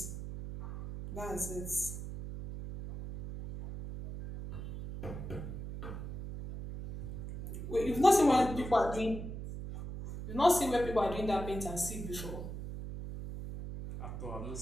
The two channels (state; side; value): noise; right; hum, 8 dB below the sound